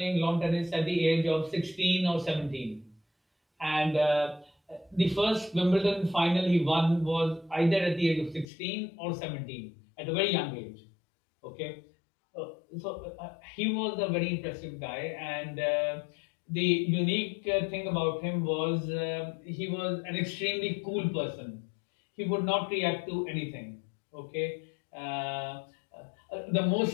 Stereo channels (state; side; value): drops out; right; at 8.5 s